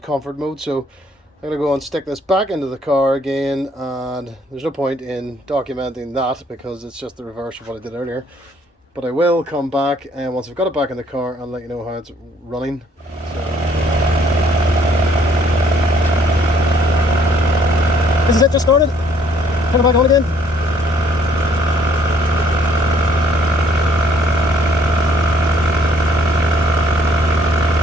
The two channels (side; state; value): both; normal; correlation 0.63